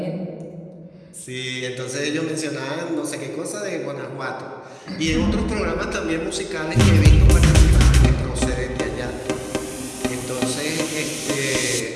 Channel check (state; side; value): identical; both; correlation 1.00